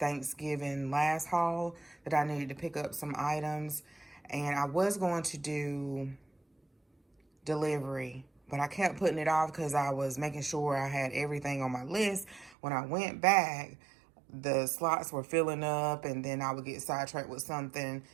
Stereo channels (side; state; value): left; drops out; at 12.6 s